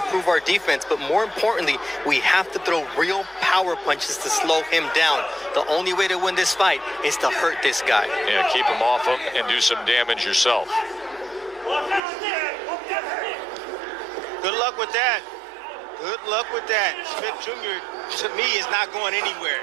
our defense, but more importantly, we have to throw real power punches to slow him down. The only way to win this fight is to hurt this guy. Yeah, keep him off him and do some damage yourself. good luck with that. Good luck with that. Smith Jr., to me, is not going anywhere.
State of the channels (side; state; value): left; drops out; at 12.0 s